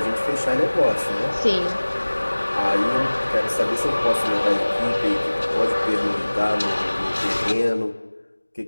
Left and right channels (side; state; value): both; inverted; correlation -1.00